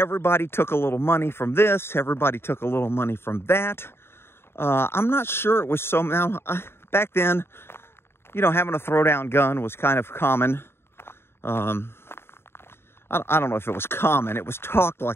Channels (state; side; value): late; right; 0.11 ms